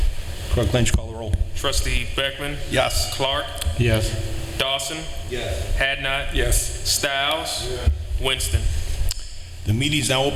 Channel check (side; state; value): both; identical; correlation 1.00